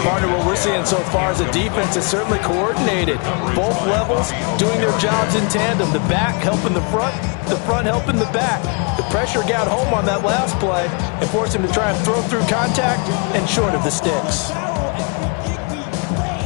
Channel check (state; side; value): quieter; right; 34.1 dB